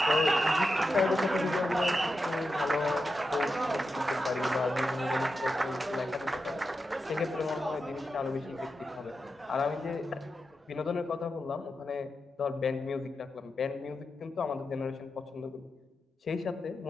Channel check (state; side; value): normal; both; correlation 0.89